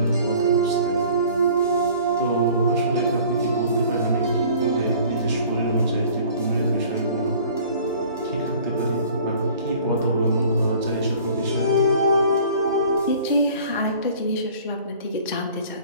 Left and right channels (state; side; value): inverted; both; correlation -0.49